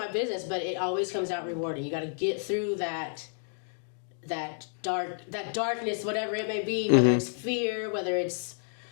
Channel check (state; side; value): silent; right; digital silence